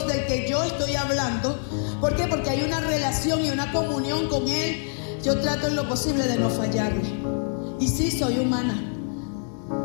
del que yo estoy hablando, ¿por qué? Porque hay una relación y una comunión con Él. Yo trato en lo posible de no fallarle. Y sí, soy humana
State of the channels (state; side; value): silent; right; 62 dB below the other